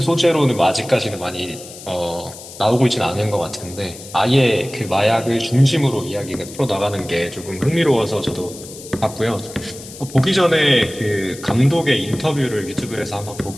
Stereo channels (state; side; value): noise; left; hiss, 15 dB below the sound